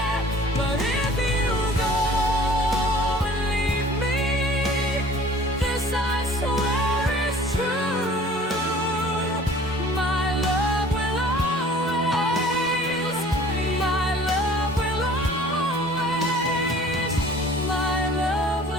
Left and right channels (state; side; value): normal; both; correlation 0.49